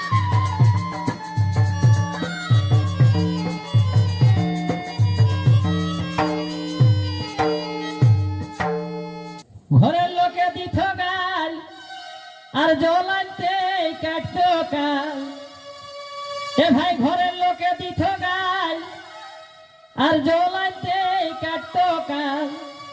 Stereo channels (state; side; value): identical; both; correlation 1.00